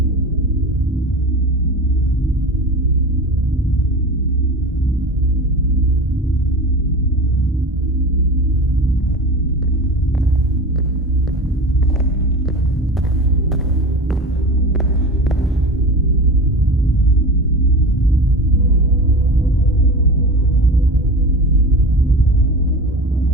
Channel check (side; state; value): both; normal; correlation 0.30